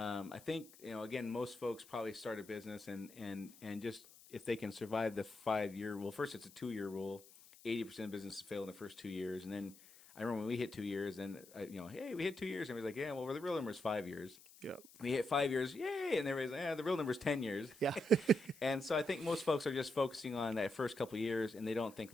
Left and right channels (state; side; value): noise; left; hiss, 21 dB below the sound